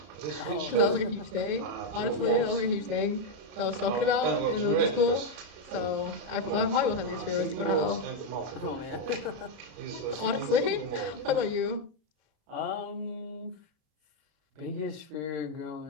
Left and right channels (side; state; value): left; late; 33 ms